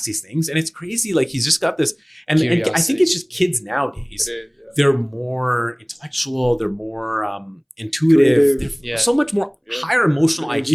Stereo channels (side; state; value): both; identical; correlation 1.00